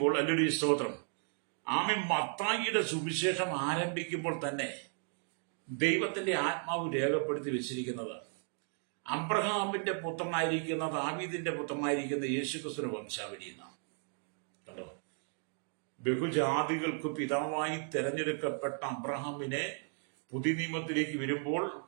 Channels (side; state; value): left; silent; 54 dB below the other